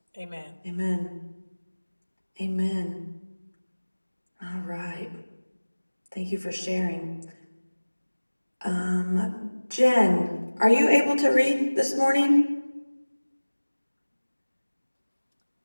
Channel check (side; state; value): both; inverted; correlation -1.00